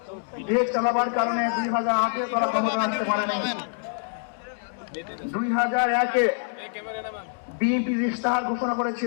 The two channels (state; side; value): silent; right; 61 dB below the other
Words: দেশ চালাবার কারণে 2008 তারা ক্ষমতায় আসতে পারে নাই। 2001-এ বিএনপি ইশতেহার ঘোষণা